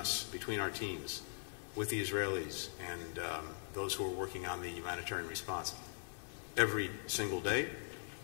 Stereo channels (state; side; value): silent; right; digital silence